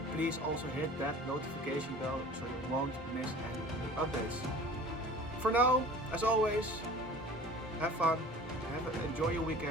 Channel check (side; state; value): both; normal; correlation 0.43